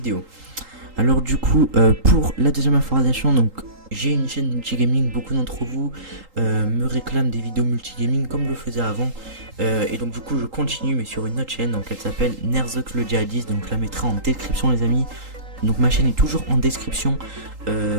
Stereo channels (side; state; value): left; late; 3.8 ms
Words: Alors du coup pour la deuxième information, donc j'ai une chaîne multigaming. Beaucoup d'entre vous me réclament des vidéos multigaming comme je le faisais avant, et donc du coup je continue mais sur une autre chaîne, donc elle s'appelle Nerzok le Djihadiste, donc je la mettrai en description les amis. Donc ma chaîne est toujours en description